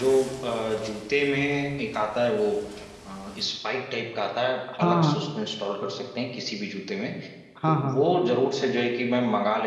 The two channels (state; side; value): identical; both; correlation 1.00